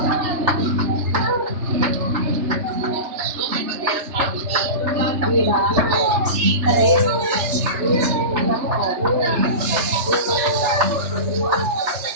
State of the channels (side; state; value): left; late; 3.3 ms